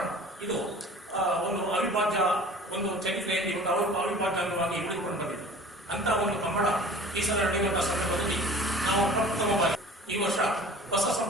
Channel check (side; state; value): both; normal; correlation 0.44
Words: ಇದು ಒಂದು ಅವಿಭಾಜ್ಯ ಒಂದು ಚರಿತ್ರೆಯಲ್ಲಿ ಒಂದು ಅವಿಭಾಜ್ಯ ಅಂಗವಾಗಿ ಉಳಿದುಕೊಂಡು ಬಂದಿದೆ. ಅಂತ ಒಂದು ಕಂಬಳ ಈ ಸಲ ನಡೆಯುವಂತಹ ಸಂದರ್ಭದಲ್ಲಿ ನಾವು ಪ್ರಪ್ರಥಮವಾಗಿ ಈ ವರ್ಷ ಹೊಸ